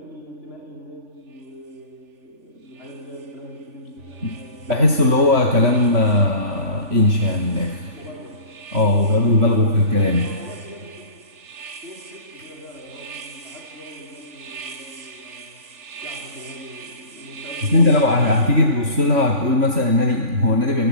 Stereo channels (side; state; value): left; late; 3.4 ms